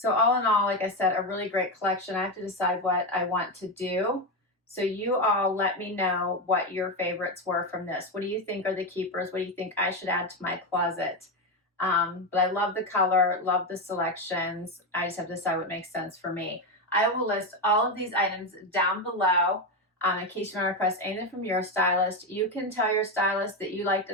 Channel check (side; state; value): both; normal; correlation 0.12